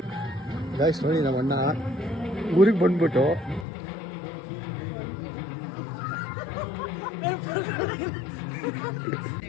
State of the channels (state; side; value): drops out; right; at 3.7 s